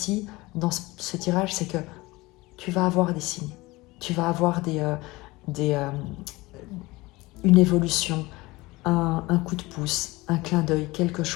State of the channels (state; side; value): quieter; right; 21.4 dB